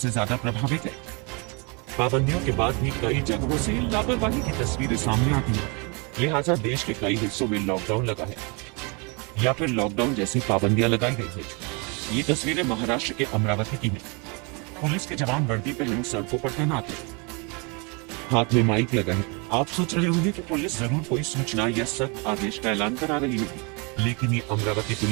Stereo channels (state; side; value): quieter; left; 31.3 dB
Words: ज्यादा प्रभावित है। पाबंदियों के बाद भी कई जगहों से लापरवाही की तस्वीरें सामने आती है। लिहाजा देश के कई हिस्सों में लॉकडाउन लगा है या फिर लॉकडाउन जैसी पाबंदियां लगाई गई है। ये तस्वीरें महाराष्ट्र के अमरावती की हैं। पुलिस के जवान वर्दी पहने सड़कों पर तैनात हैं। हाथ में माइक लगा है। आप सोच रहे होंगे कि पुलिस जरूर कोई सूचना या सख्त आदेश का ऐलान करा रही होगी, लेकिन ये अमरावती